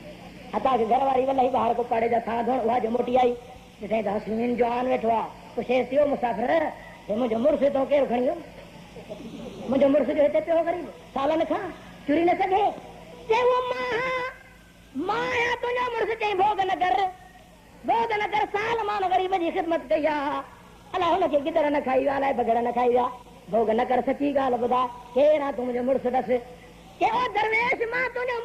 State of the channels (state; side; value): identical; both; correlation 1.00